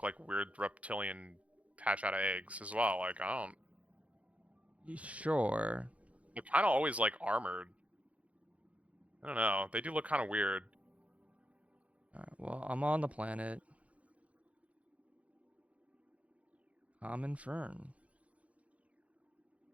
like weird reptilian hatch out of eggs as well. Like, I don't. Sure. They're kind of always like armored. I don't know. They do look kind of weird. Alright, well, I'm on the planet. I'm in Fern.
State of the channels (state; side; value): late; left; 0.065 ms